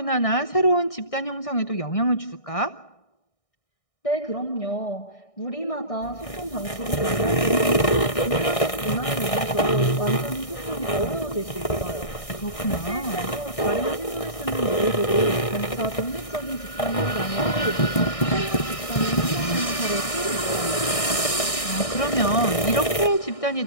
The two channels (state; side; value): late; right; 1.6 ms